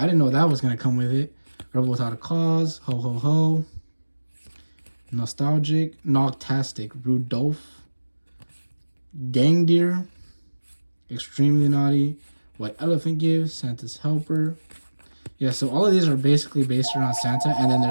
didn't know that was gonna come with it. Rebel Without a Cause, Ho Ho Ho, Nostalgic, Noctastic, Rudolph, Gang Deer, Extremely Naughty, White Elephant Gift, Santa's Helper. Yeah, so all of these are basically based around Santa, and then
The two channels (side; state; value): both; inverted; correlation -1.00